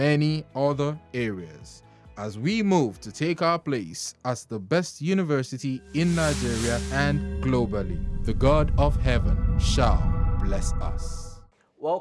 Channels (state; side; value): identical; both; correlation 1.00